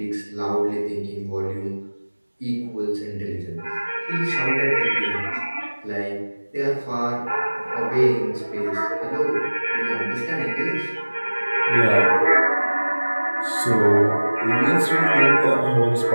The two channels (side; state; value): both; inverted; correlation -1.00